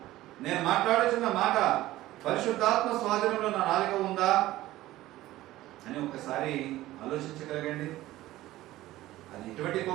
నేను మాట్లాడుతున్న మాట పరిశుద్ధాత్మ స్వాధీనంలో నా నాలుక ఉందా అని ఒక్కసారి ఆలోచించగలగండి. అది ఎటువంటి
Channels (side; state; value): left; quieter; 16.1 dB